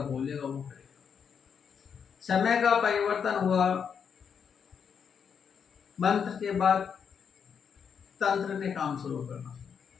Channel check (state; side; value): quieter; right; 7.0 dB